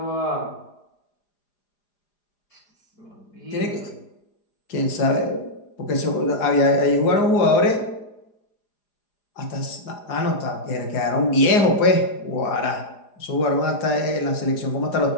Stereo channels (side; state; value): right; late; 4.9 ms